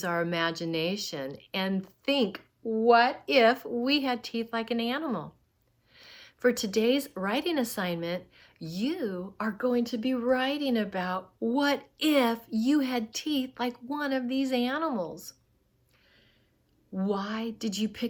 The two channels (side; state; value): both; identical; correlation 1.00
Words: our imagination and think, what if we had teeth like an animal? For today's writing assignment, you are going to be writing about what if you had teeth like one of these animals. Why did you